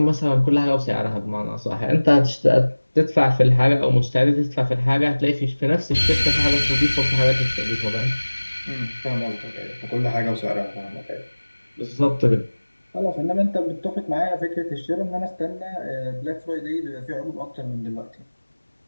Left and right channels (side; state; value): both; inverted; correlation -1.00